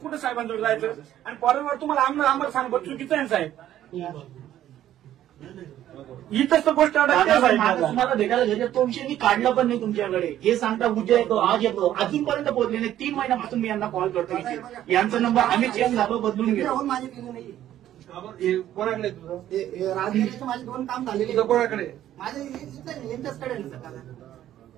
साहेबांजवळ जायचं आणि फॉरेनवर तुम्हाला आम्हाला सांगतो चुकीचं आहे साहेब. इथंच तर गोष्ट तुम्हाला भेटायला घ्यायचं तो विषय मी काढला पण नाही तुमच्याकडे. हे सांगता उद्या येतो आज येतो अजूनपर्यंत पोहोचले नाही. 3 महिन्यापासून मी यांना कॉल करतो. यांचा नंबर आम्ही चेंज झालो बदलून घेतो. माझे बिल नाही. कोणाकडे तुझं? राजगिरीचे माझे 2 काम झालेले. तुझं कोणाकडे? माझे यांच्याचकडे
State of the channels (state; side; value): quieter; left; 12.2 dB